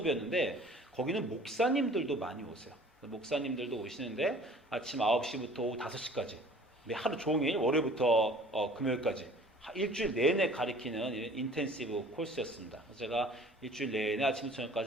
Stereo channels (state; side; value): normal; both; correlation 0.49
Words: 거기는 목사님들도 많이 오세요. 목사님들도 오시는데 아침 9시부터 오후 5시까지 하루 종일 월요일부터 금요일까지 일주일 내내 가르치는 인텐시브 코र्स였습니다. 제가 일주일 내내 아침부터